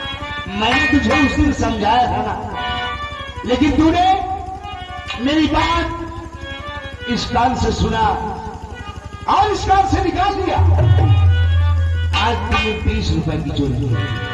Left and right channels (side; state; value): both; identical; correlation 1.00